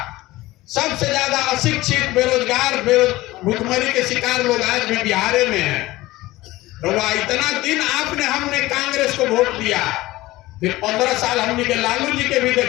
सबसे ज्यादा अशिक्षित, बेरोजगार, भूखमरी के शिकार लोग आज भी बिहार में हैं। तो वह इतना दिन आपने हमने कांग्रेस को वोट दिया, फिर 15 साल हमने के लालू जी के भी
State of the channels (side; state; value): right; quieter; 18.2 dB